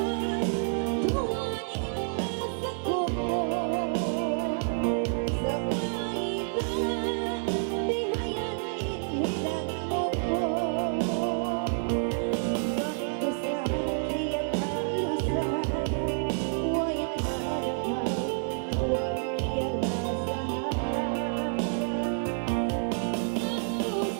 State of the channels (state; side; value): silent; left; 59 dB below the other